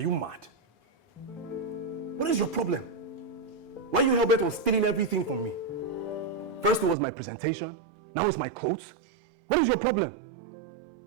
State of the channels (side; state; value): left; drops out; at 7.0 s